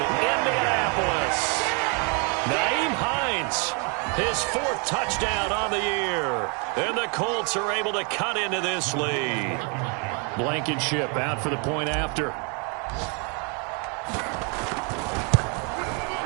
Indianapolis. Nyheim Hines, his 4th touchdown on the year. And the Colts are able to cut into this lead. Blankenship out for the point after.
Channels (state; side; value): quieter; left; 35.1 dB